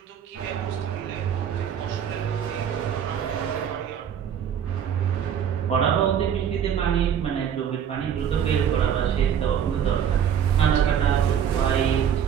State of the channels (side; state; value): left; quieter; 8.7 dB